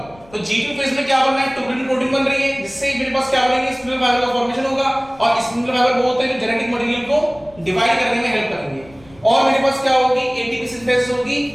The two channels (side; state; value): left; noise; rumble, 25 dB below the sound